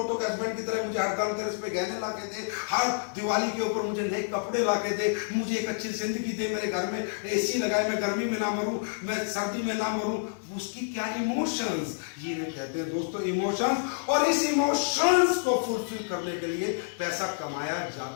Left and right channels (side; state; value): right; silent; 59 dB below the other